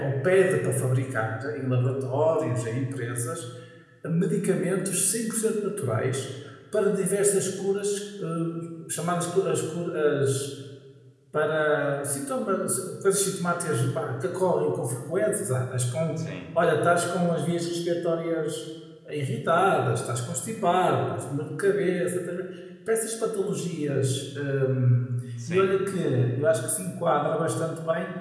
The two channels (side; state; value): both; identical; correlation 1.00